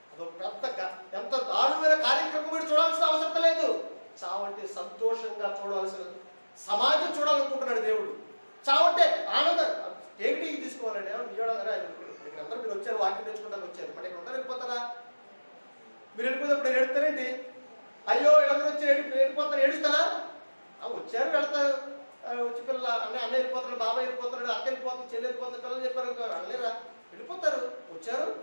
అదొక పెద్ద ఎంత దారుణమైన కార్యక్రమం మీరు చూడాల్సిన అవసరం లేదు. చావంటే సంతోషంగా చూడాల్సిన సమాజం చూడాలనుకుంటున్నాడు దేవుడు. చావంటే ఆనందం. ఏమిటి తీసుకోవాలండి? అందరూ మీరు వచ్చారు, వాక్యం తెచ్చుకుంటానికి వచ్చారు, మరి ఇక్కడ ఉంటారు, వెళ్ళిపోతారా? మీరు వెళ్ళిపోయినప్పుడు నేను ఏడుతారేంటి? అయ్యో వీళ్ళందరూ వచ్చి వెళ్ళిపోతారు, ఏడుస్తారా? వచ్చారు, వెళ్తారు. వచ్చి పిల్లలు అన్న వెళ్ళిపోతున్నాడు, బాబాయ్ వెళ్ళిపోతున్నాడు, అక్క వెళ్ళిపోతుంది, చెల్లి వెళ్ళిపోతుంది, పిల్లలు చెప్పారు అనలేరా? వెళ్ళిపోతారు. వచ్చారు,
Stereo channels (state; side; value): inverted; both; correlation -1.00